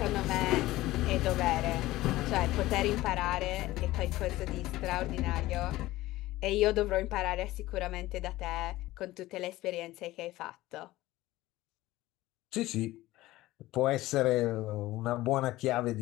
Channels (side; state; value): right; quieter; 17.2 dB